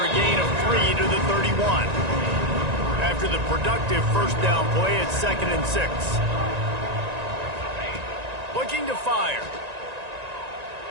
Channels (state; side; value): late; left; 1.9 ms